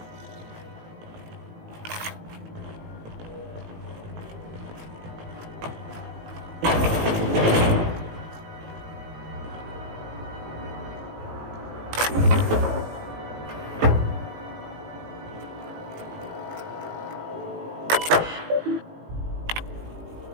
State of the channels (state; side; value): late; left; 18 ms